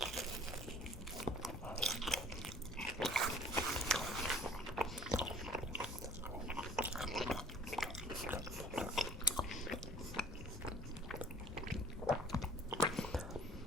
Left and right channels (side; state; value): both; normal; correlation 0.50